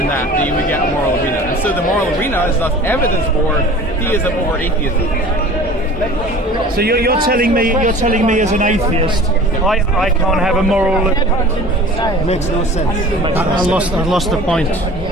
that you would get a moral arena. And so the moral arena is thus evidence for theism over atheism. So you're telling me as an atheist, I can't have a moral. Makes no sense. I lost the point.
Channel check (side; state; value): both; normal; correlation 0.43